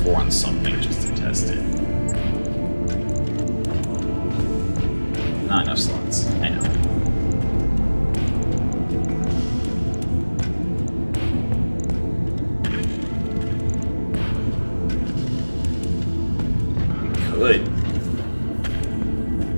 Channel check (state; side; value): inverted; both; correlation -1.00